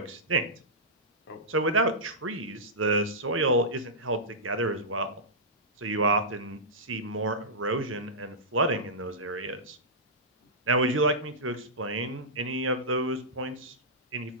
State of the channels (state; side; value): normal; both; correlation -0.15